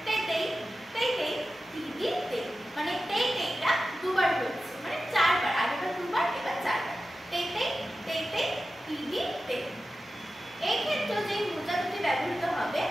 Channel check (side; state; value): both; normal; correlation 0.93